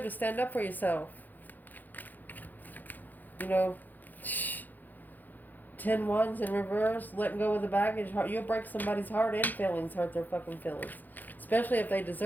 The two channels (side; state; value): right; late; 0.085 ms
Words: to stand up for yourself. You know, 10 wands in reverse, letting go of the baggage. You'll break somebody's heart and feelings, hurt their fucking feelings. Especially if they